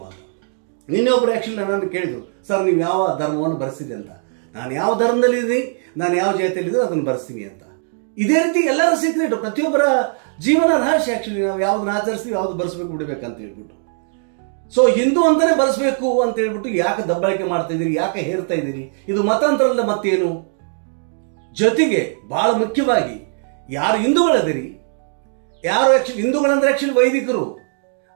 ಅಂತ ನಿನ್ನೆ ಒಬ್ಬರು ಆ್ಯಕ್ಚುಲಿ ನನ್ನನ್ನು ಕೇಳಿದ್ರು, ಸರ್ ನೀವು ಯಾವ ಧರ್ಮವನ್ನು ಬರೆಸಿದೆ ಅಂತ. ನಾನು ಯಾವ ಧರ್ಮದಲ್ಲಿದ್ದೀನಿ, ನಾನು ಯಾವ ಜಾತಿಯಲ್ಲಿದ್ದರೂ ಅದನ್ನು ಬರೆಸ್ತೀನಿ ಅಂತ. ಇದೇ ರೀತಿ ಎಲ್ಲರ ಸೀಕ್ರೆಟ್, ಪ್ರತಿಯೊಬ್ಬರ ಜೀವನ ರಹಸ್ಯ ಆ್ಯಕ್ಚುಲಿ. ನಾವು ಯಾವ್ದನ್ನ ಆಚರಿಸ್ತೀವಿ, ಯಾವ್ದು ಬರೆಸ್ಬೇಕು ಬಿಡಬೇಕಂತ ಹೇಳ್ಬಿಟ್ಟು. ಸೊ ಹಿಂದೂ ಅಂತಾನೆ ಬರೆಸ್ಬೇಕು ಅಂತ ಹೇಳ್ಬಿಟ್ಟು ಯಾಕೆ ದಬ್ಬಾಳಿಕೆ ಮಾಡ್ತಾ ಇದ್ದೀರಿ, ಯಾಕೆ ಹೇರ್ತಾ ಇದ್ದೀರಿ? ಇದು ಮತಾಂತರಲ್ಲ ಮತ್ತೇನು? ಜೊತೆಗೆ ಬಹಳ ಮುಖ್ಯವಾಗಿ ಯಾರು ಹಿಂದೂಗಳದಿರಿ, ಯಾರು ಆ್ಯಕ್ಚುಲಿ ಹಿಂದೂಗಳಂದ್ರೆ ಆ್ಯಕ್ಚುಲಿ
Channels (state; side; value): silent; left; digital silence